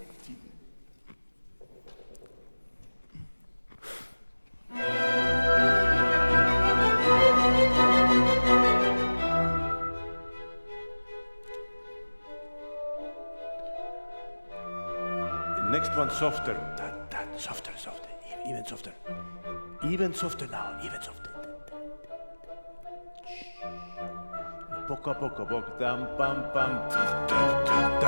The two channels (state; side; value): inverted; both; correlation -1.00